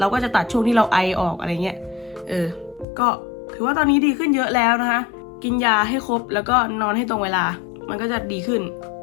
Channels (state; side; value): drops out; right; at 2.9 s